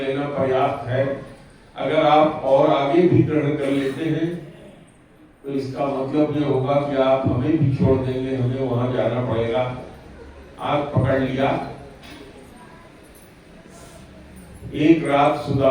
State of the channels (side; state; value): both; identical; correlation 1.00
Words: लेना पर्याप्त है। अगर आप और आगे भी ग्रहण कर लेते हैं तो इसका मतलब ये होगा कि आप हमें भी छोड़ देंगे, हमें वहां जाना पड़ेगा। हाथ पकड़ लिया। एक रात